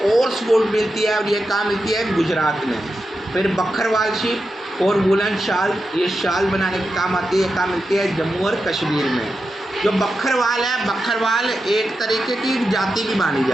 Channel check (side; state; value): both; normal; correlation 0.89